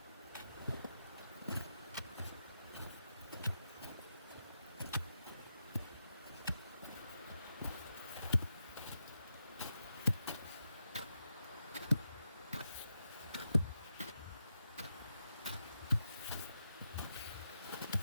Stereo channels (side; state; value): both; inverted; correlation -0.85